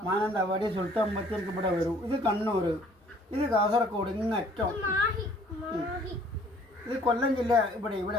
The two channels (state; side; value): normal; both; correlation 0.57